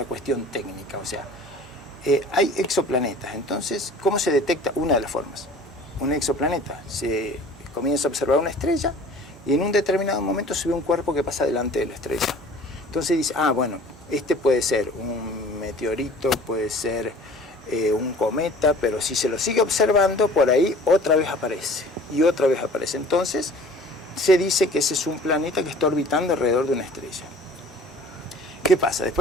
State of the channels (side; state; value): both; normal; correlation 0.47